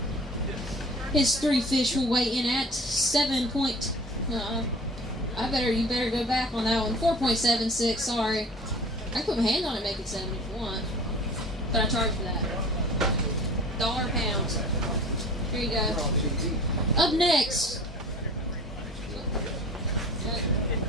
His 3 fish will weigh in at 7. You better go back on that one. 4.76. Sorry. I can put my hand on it and make it 7 if you want. But I charge for that. $1 a pound. Here you go.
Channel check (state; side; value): normal; both; correlation 0.43